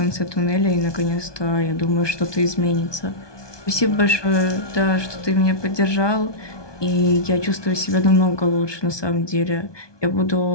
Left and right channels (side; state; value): right; late; 1.2 ms